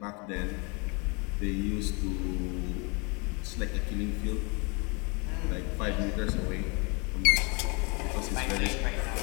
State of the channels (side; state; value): right; quieter; 31.4 dB